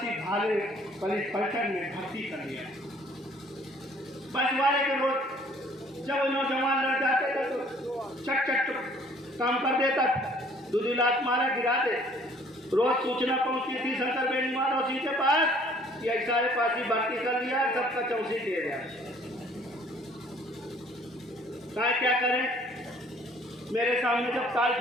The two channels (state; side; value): normal; both; correlation 0.57